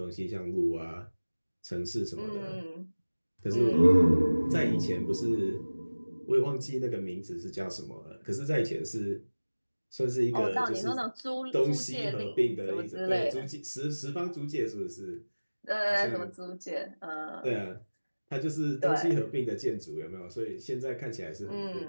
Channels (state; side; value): inverted; both; correlation -1.00